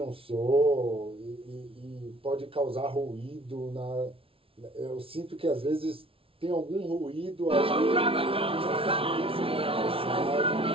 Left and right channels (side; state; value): left; late; 0.26 ms